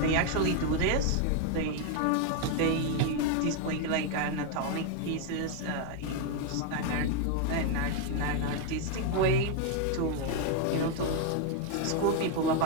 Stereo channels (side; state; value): both; different; correlation 0.01